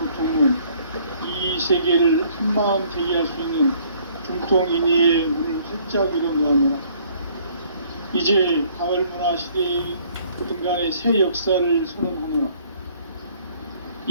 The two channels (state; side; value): inverted; both; correlation -0.60